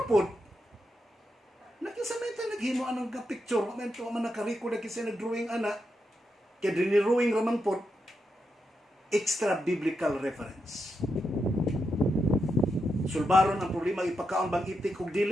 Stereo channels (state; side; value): normal; both; correlation 0.84